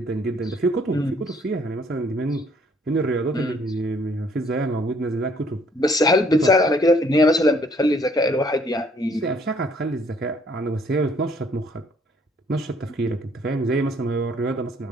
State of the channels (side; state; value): both; normal; correlation 0.63